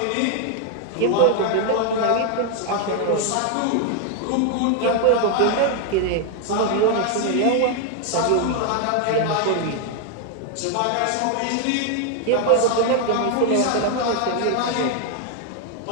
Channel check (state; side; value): different; both; correlation 0.00